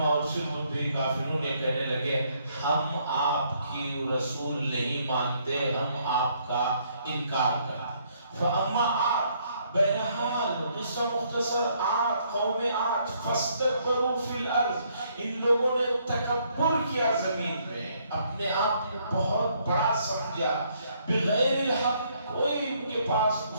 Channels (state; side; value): inverted; both; correlation -0.69